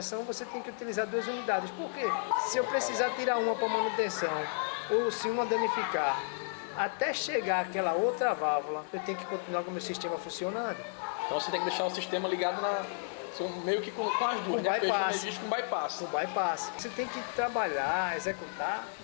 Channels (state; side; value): silent; right; digital silence